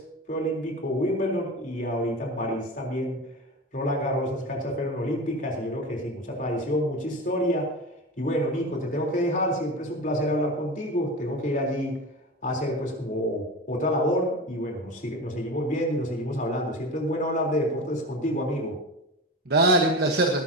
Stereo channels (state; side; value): normal; both; correlation 0.28